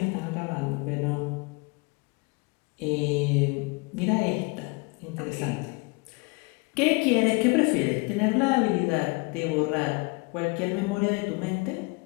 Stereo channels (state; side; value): quieter; right; 29.1 dB